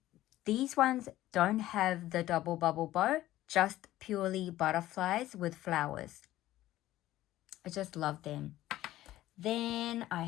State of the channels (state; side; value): quieter; right; 14.9 dB